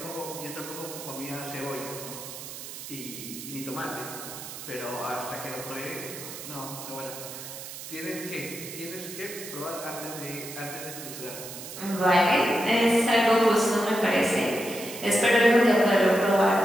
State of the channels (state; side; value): noise; right; hiss, 11 dB below the sound